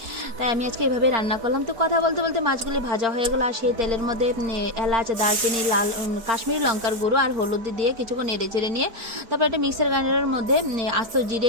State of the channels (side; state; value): left; late; 4.8 ms